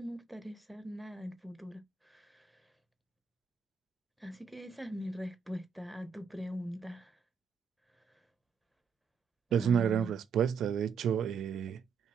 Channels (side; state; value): left; quieter; 6.3 dB